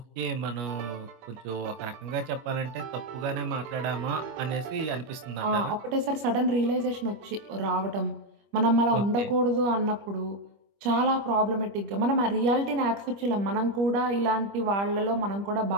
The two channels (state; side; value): late; left; 25 ms